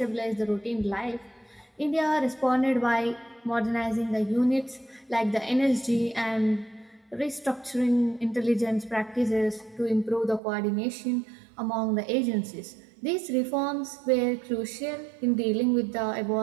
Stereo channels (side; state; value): left; drops out; at 10.4 s